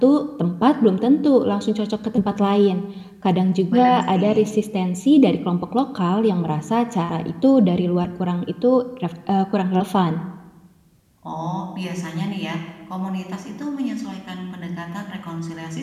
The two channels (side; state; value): both; identical; correlation 1.00